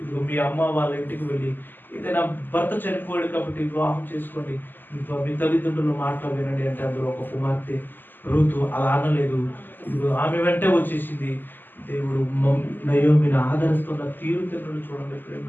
ఇదిగో మీ అమ్మ వాళ్ళ ఇంటికి వెళ్ళి ఏదైనా భర్త చనిపోయాడు కాబట్టి వివాహం చేసుకోండి, మీ తల్లిదండ్రుల మాటలు వినండి అంటే అందులో ఒక కుమార్తె రూతు అలా అనలేదు. ఇదిగో ఆమె వెంటే వచ్చేసింది. దేవుడు నయోమిని ఆదరిస్తున్న తీరుతెన్నులు చూడండి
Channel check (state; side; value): late; right; 0.091 ms